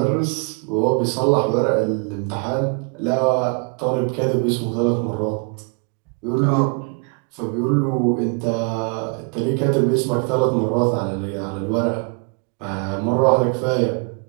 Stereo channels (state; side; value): quieter; left; 37.6 dB